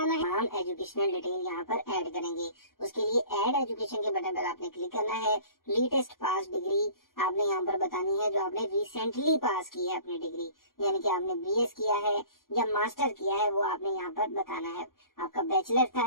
है, हम एजुकेशनल डिटेल यहाँ पर ऐड करेंगे। उसके लिए ऐड एजुकेशन के बटन पर आपने क्लिक करना है। लेटेस्ट पास डिग्री आपने यहाँ पर बतानी है जो आपने रिसेंटली पास की है अपनी डिग्री, यानी कि आपने बीएस किया है या मास्टर किया है वो आपने यहाँ पर बताना है। आपका बैचलर था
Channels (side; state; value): right; late; 0.91 ms